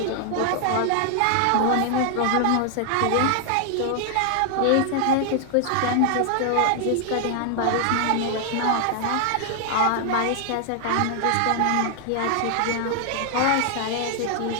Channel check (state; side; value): different; both; correlation 0.00